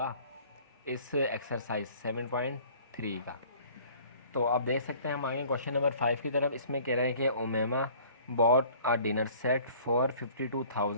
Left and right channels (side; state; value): both; inverted; correlation -0.52